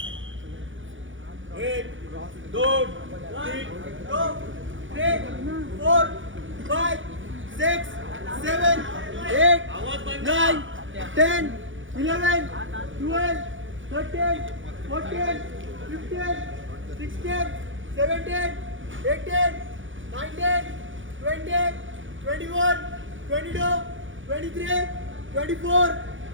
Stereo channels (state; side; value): late; left; 0.56 ms